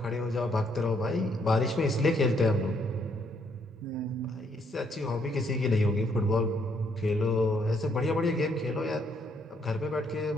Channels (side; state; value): both; normal; correlation 0.71